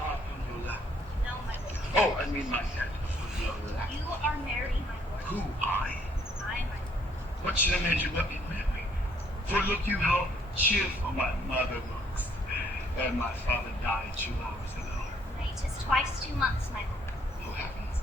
on your lap. No, my lord. Oh, I mean my head on your lap. You are married, my lord. Who, I? I, my lord. What should have made you let me marry? For look you how cheerful my mother looks. And my father died 2 hours ago. Nay, 'tis twice 2 months, my lord. Who happens?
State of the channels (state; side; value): normal; both; correlation 0.66